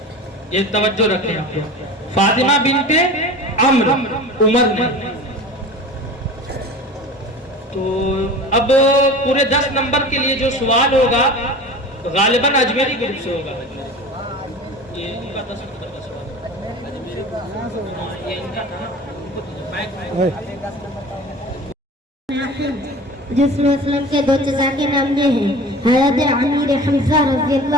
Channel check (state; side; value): normal; both; correlation 0.36